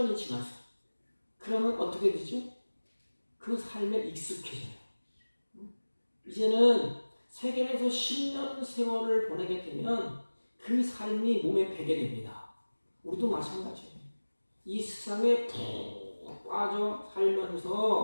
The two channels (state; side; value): inverted; both; correlation -1.00